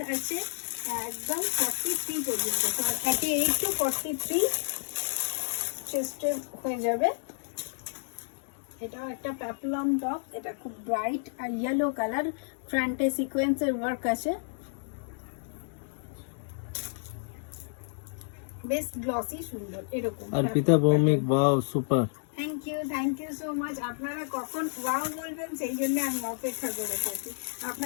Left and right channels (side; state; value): right; silent; 57 dB below the other